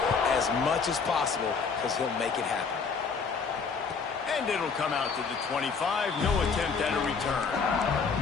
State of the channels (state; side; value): quieter; right; 5.3 dB